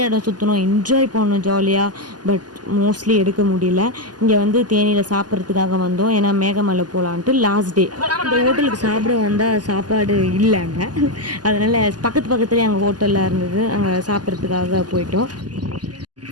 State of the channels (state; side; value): late; left; 0.70 ms